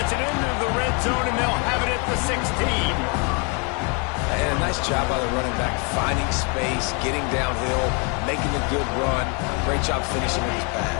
it into the red zone, and they'll have it at the 16. And a nice job by the running back, finding space, getting downhill, making a good run. Great job finishing with his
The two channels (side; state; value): right; quieter; 34.2 dB